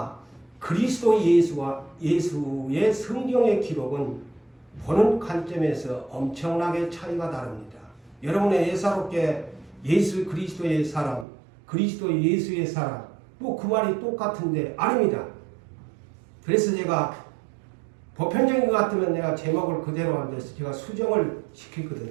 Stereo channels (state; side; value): drops out; left; at 11.2 s